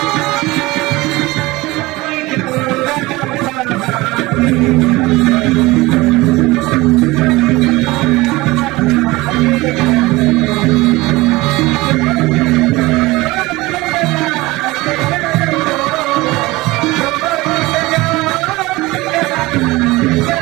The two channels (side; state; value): left; quieter; 20.9 dB